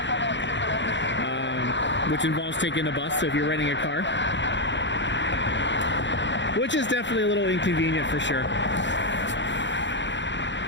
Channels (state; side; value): late; right; 0.53 ms